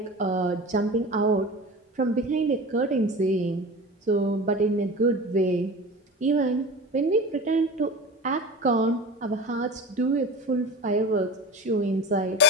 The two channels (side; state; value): both; normal; correlation 0.33